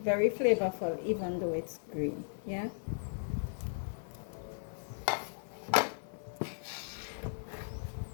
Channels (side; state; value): right; silent; 54 dB below the other